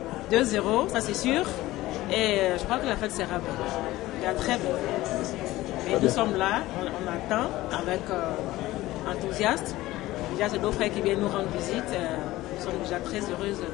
2-0, ça c'est sûr. Et je crois que la fête sera belle. Très belle. Et nous sommes là, on attend avec enthousiasme. Déjà, c'est nos frères qui viennent nous rendre visite. Nous sommes déjà très heureuses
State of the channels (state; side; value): quieter; right; 17.2 dB